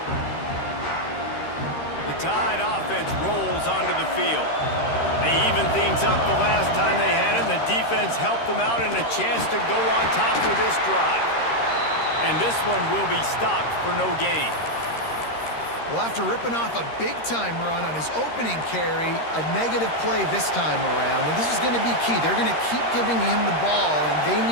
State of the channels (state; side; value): late; right; 13 ms